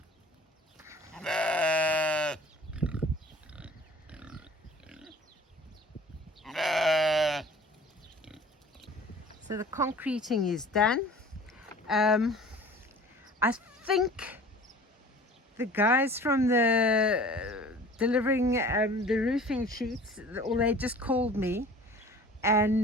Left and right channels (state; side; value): normal; both; correlation 0.45